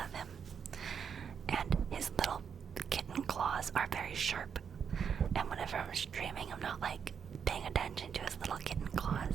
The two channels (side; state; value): left; quieter; 7.1 dB